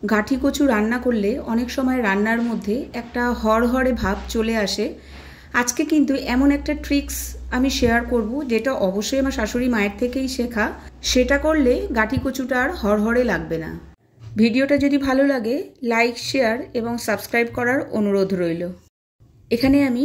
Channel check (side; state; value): both; identical; correlation 1.00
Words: গাঠি কচু রান্না করলে অনেক সময় রান্নার মধ্যে একটা হড়হড়ে ভাব চলে আসে। আজকে কিন্তু এমন একটা ট্রিক্স আমি শেয়ার করব, যেটা অবশ্যই আমার শাশুড়ি মায়ের থেকেই শেখা। সেটা করলে গাঠি কচুটা আর হড়হড়ে লাগবে না। ভিডিওটা যদি ভালো লাগে লাইক, শেয়ার এবং সাবস্ক্রাইব করার অনুরোধ রইল। এখানে আমি